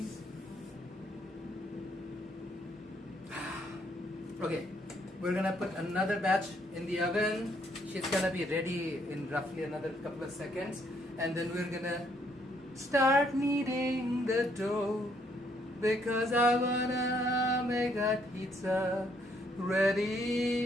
Okay, we're gonna put another batch in the oven. She's gonna be ready in roughly another couple of seconds, and then we're gonna start kneading the dough because I wanna make that pizza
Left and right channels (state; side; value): normal; both; correlation 0.70